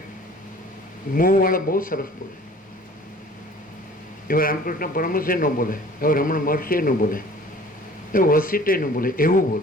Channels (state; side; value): normal; both; correlation 0.49